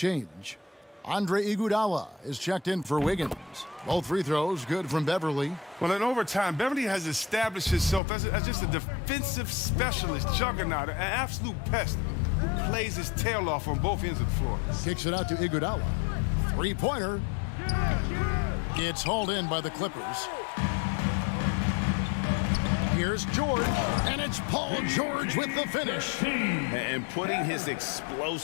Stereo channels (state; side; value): drops out; right; at 8.0 s